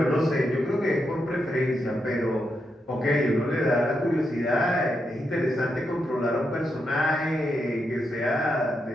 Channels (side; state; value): both; normal; correlation 0.84